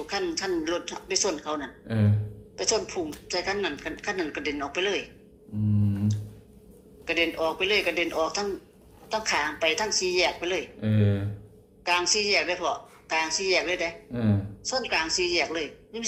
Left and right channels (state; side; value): identical; both; correlation 1.00